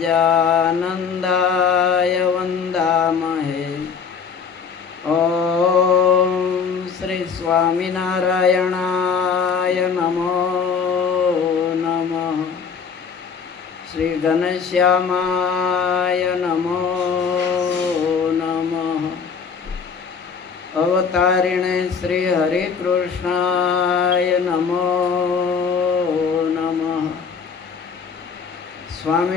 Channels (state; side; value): quieter; right; 6.1 dB